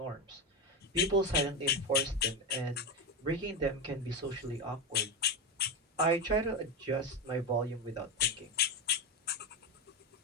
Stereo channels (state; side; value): normal; both; correlation 0.13